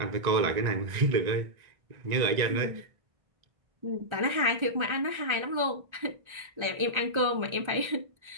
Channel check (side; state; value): left; late; 1.3 ms